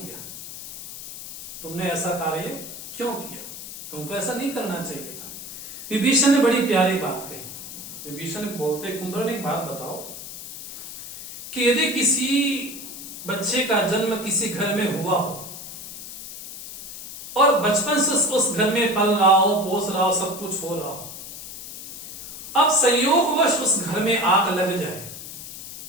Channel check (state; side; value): noise; left; hiss, 11 dB below the sound